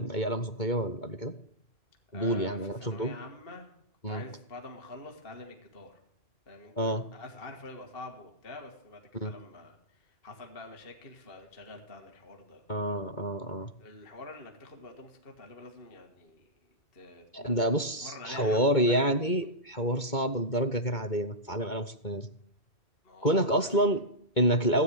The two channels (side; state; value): right; late; 2.2 ms